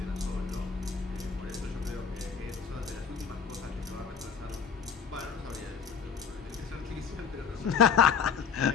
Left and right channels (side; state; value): right; quieter; 6.5 dB